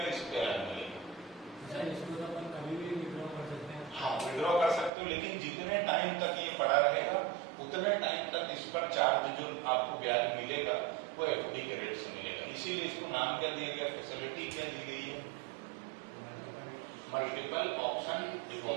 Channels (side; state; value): left; drops out; at 4.9 s